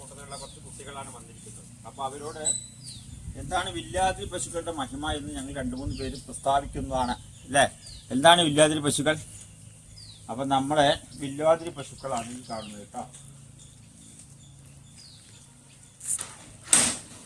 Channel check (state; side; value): identical; both; correlation 1.00